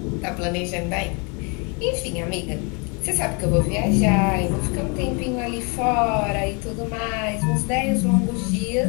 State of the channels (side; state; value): right; quieter; 33.4 dB